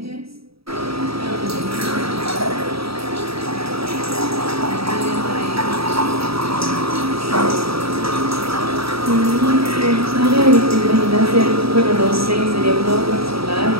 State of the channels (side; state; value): left; late; 0.76 ms